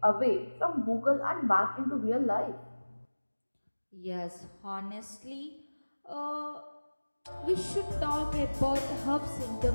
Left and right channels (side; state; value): both; inverted; correlation -1.00